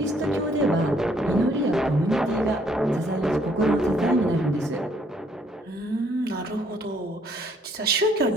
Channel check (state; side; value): normal; both; correlation 0.66